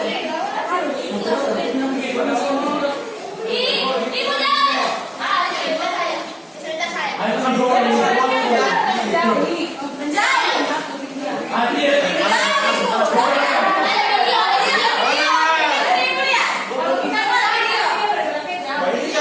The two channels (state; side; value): identical; both; correlation 1.00